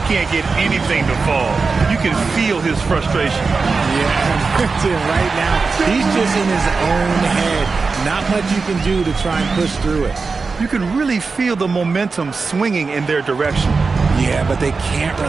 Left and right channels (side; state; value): left; quieter; 4.5 dB